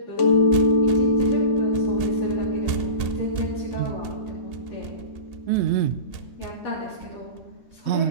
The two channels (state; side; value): late; right; 2.8 ms